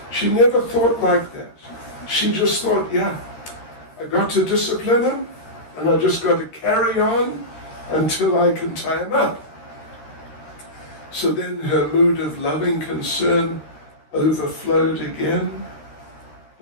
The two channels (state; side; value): late; right; 13 ms